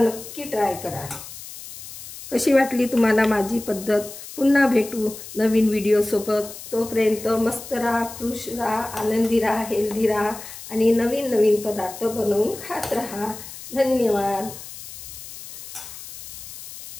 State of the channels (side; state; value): left; noise; hiss, 13 dB below the sound